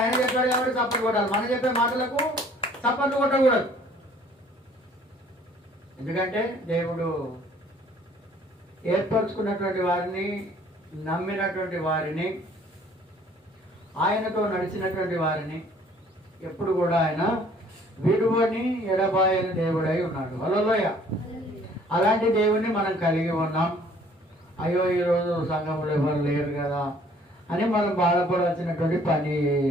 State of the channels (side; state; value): both; normal; correlation 0.57